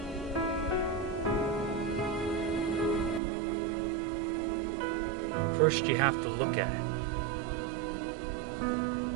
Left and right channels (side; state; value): left; drops out; at 3.2 s